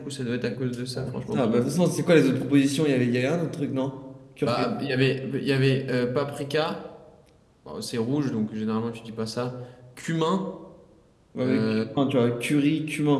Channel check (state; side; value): identical; both; correlation 1.00